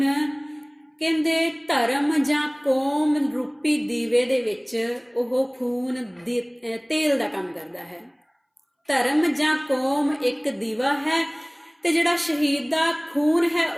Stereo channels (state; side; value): identical; both; correlation 1.00